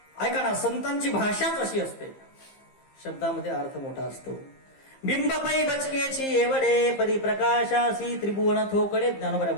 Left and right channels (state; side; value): late; right; 15 ms